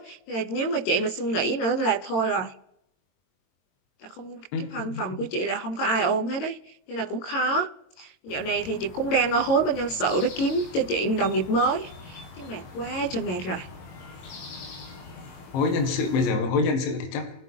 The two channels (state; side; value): late; right; 22 ms